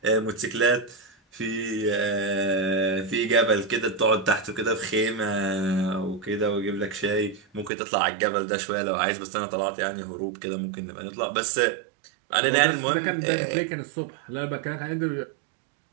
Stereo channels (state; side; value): drops out; left; at 7.7 s